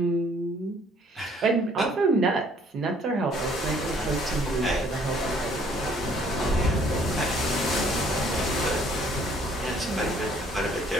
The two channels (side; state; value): both; normal; correlation 0.60